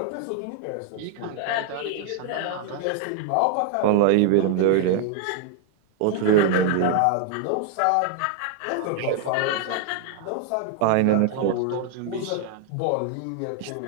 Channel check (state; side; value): different; both; correlation 0.00